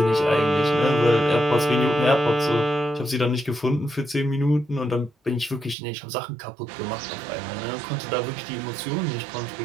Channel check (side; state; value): left; drops out; at 5.8 s